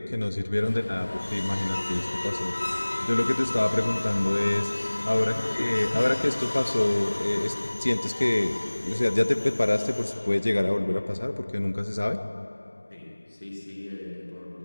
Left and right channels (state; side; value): inverted; both; correlation -1.00